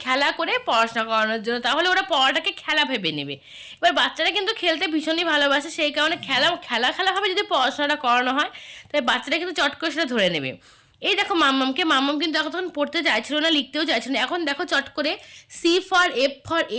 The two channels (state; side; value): identical; both; correlation 1.00